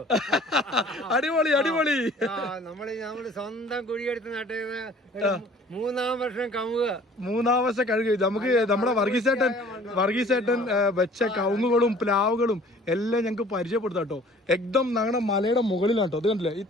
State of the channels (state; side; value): normal; both; correlation 0.51